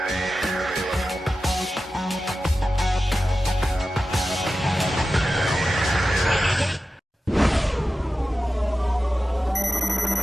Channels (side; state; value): both; normal; correlation 0.93